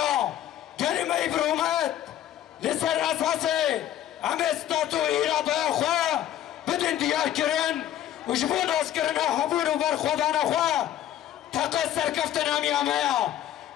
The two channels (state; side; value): quieter; right; 11.7 dB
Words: کلمه برومت لسر اساسه همه ستاتو ایراده خواه بدن دیار کرن و جبون از کرن حبون و برخودان خواه تقص سرکفتن همی همه